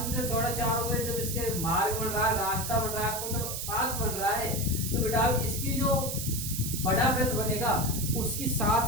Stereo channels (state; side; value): noise; right; hiss, 4 dB below the sound